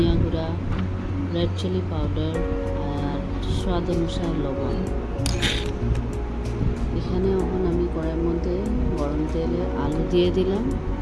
গুঁড়া, রেড চিলি পাউডার আর স্বাদ অনুসারে লবণ। এখানে এখন আমি কড়াইয়ের মধ্যে গরম তেলে আলু দিয়ে দিলাম।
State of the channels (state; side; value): identical; both; correlation 1.00